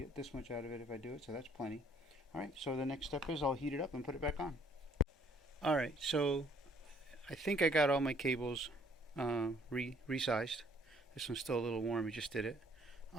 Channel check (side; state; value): both; normal; correlation 0.62